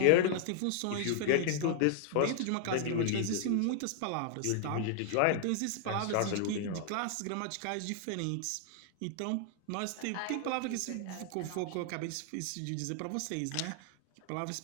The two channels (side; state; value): both; different; correlation 0.00